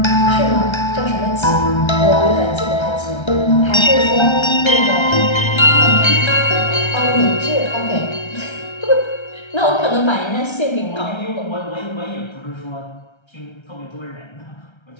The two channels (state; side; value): late; right; 1.3 ms